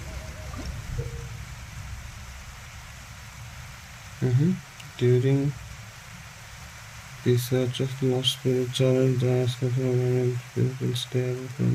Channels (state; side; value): identical; both; correlation 1.00